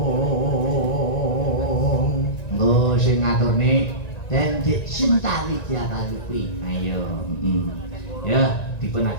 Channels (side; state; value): right; late; 1.9 ms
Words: sing ngaturne Dendek Sinta Widya Kalupi. Ayo. Ya, dipun